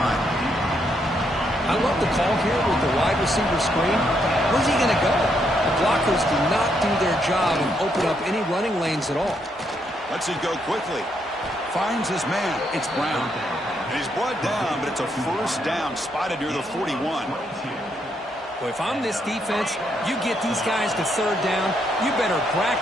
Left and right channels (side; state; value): both; normal; correlation 0.76